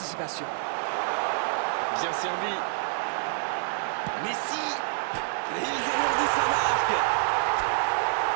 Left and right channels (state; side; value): silent; left; 55 dB below the other